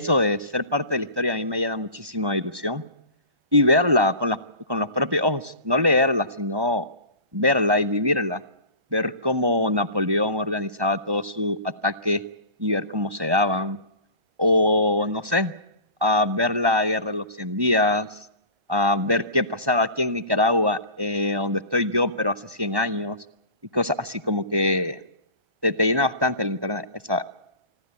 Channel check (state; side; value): late; left; 1.1 ms